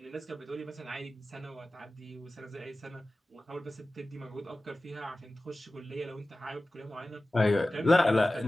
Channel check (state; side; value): normal; both; correlation 0.96